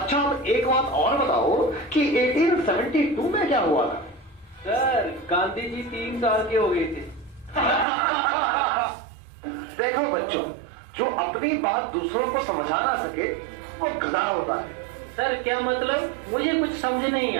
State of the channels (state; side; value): drops out; left; at 7.9 s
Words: अब एक बात और बताओ कि 1872 में क्या हुआ था? सर गांधी जी 3 साल के हो गए थे। देखो बच्चों, जो अपनी बात दूसरों को समझा ना सके वो गधा होता है। सर क्या मतलब? मुझे कुछ समझ नहीं